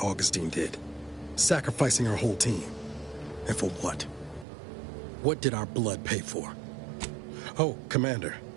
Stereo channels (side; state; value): left; drops out; at 4.5 s